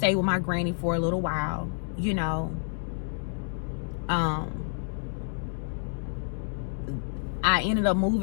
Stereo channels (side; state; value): right; silent; digital silence